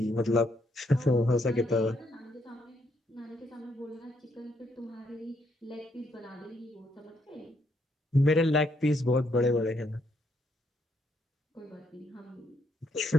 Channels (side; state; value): both; normal; correlation 0.74